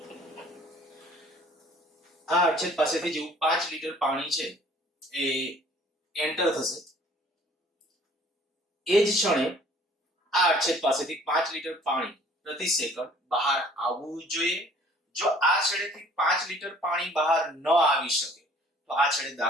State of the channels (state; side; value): normal; both; correlation 0.54